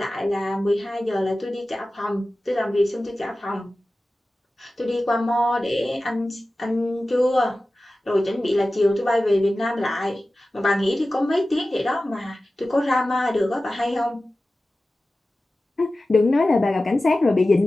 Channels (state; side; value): normal; both; correlation 0.96